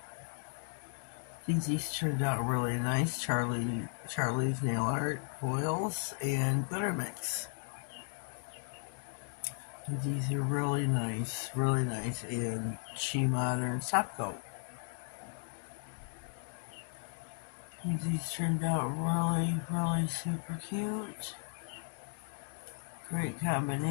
These turned out really nice. Charlie's Nail Art foils and glitter mix. These are really nice, and She Modern top coat. These turned out really super cute. Great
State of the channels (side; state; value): right; silent; digital silence